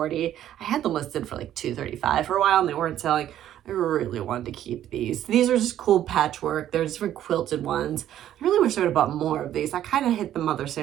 I had them listed for like $235 for a while, and they weren't selling. I really wanted to keep these. These are just cool patchwork. They're different quilted ones. I really wish I would have bought more of these. I kind of hit the Mother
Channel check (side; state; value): left; quieter; 11.7 dB